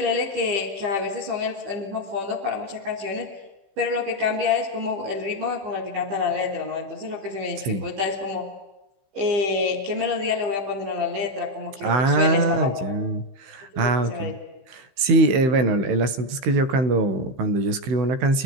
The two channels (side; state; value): left; late; 15 ms